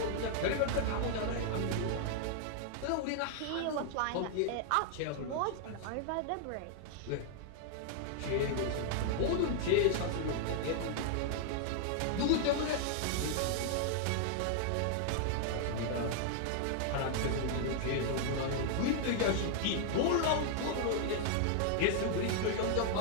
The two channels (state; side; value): different; both; correlation 0.00